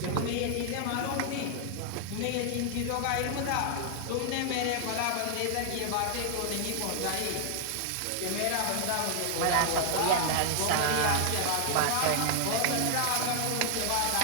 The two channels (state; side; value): different; both; correlation 0.00